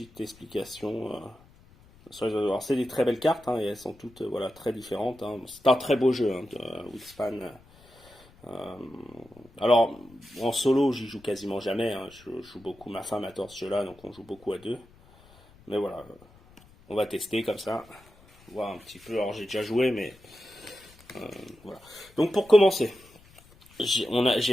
explication. Alors, c'est des très belles cartes, et elles sont toutes voilà, très différentes. C'est un très beau jeu, Wingspan. Alors, en solo, j'y joue quasiment jamais. Je joue beaucoup, ma femme adore ce jeu-là, donc on joue beaucoup à 2. Mais voilà, on va tester comme ça, voir un petit peu. Alors j'ai déjà joué, mais voilà. Donc pour commencer,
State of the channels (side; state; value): left; noise; rumble, 26 dB below the sound